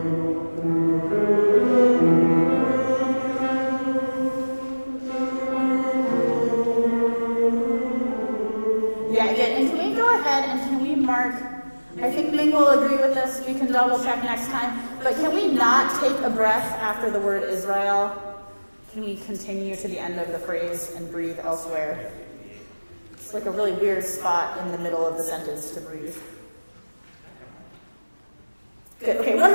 Yeah, good. And can we go ahead and can we mark, I think Ming will agree with this, we can double check next time, but can we not take a breath after the word Israel? Can we continue to the end of the phrase and breathe elsewhere? It's like a really weird spot in the middle of the sentence to breathe. Good. Okay, one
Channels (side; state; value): both; inverted; correlation -1.00